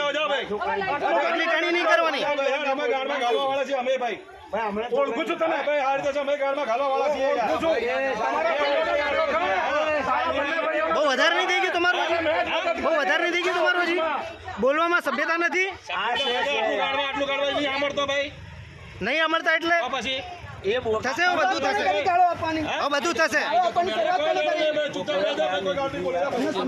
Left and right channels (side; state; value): both; identical; correlation 1.00